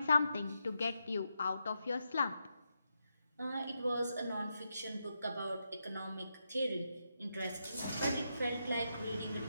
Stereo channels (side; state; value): both; inverted; correlation -0.85